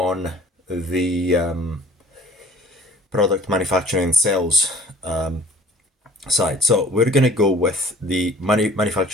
the product manufacturing and sales side. So we're going to go with the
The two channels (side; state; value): both; normal; correlation 0.52